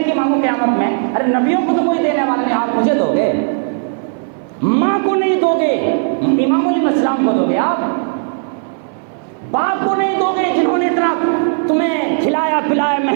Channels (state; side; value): silent; left; 58 dB below the other